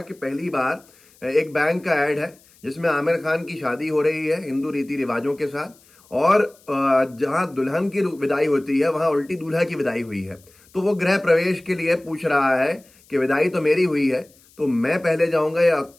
कि पहली बार एक बैंक का ऐड है जिसमें आमिर खान की शादी हो रही है हिंदू रीति रिवाजों के साथ, और जहां दुल्हन की विदाई होती है वहां उल्टी दूल्हा की विदाई हुई है। तो वो गृह प्रवेश के लिए पूछ रहा है कि विदाई तो मेरी हुई है, तो मैं पहले जाऊंगा या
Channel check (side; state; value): left; noise; hiss, 29 dB below the sound